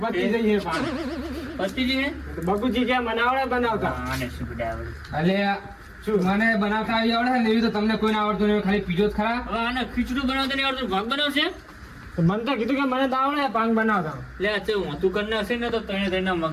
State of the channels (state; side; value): identical; both; correlation 1.00